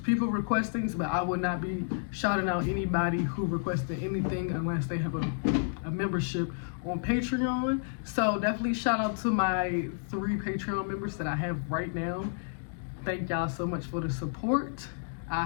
People request things, but I will not be shouting out anybody who requested anything unless they have a membership on Patreon. So definitely shout out to my 3 Patreon members that I have right now. Thank y'all so much for the support.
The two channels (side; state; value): right; silent; digital silence